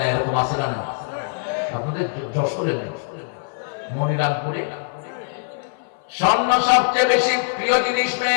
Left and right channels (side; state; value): right; silent; 57 dB below the other